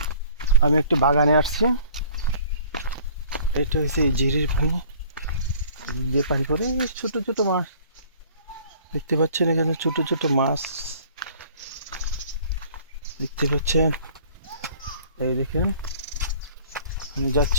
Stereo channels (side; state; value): both; inverted; correlation -0.52